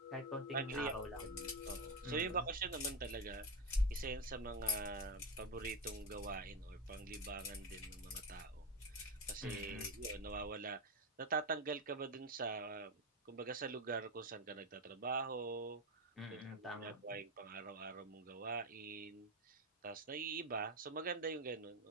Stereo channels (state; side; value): normal; both; correlation 0.14